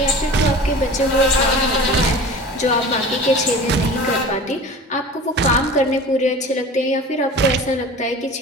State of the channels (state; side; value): normal; both; correlation 0.38